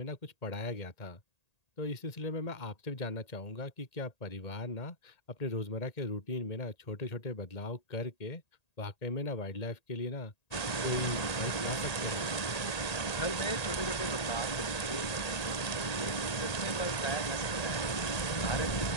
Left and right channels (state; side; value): late; right; 1.8 ms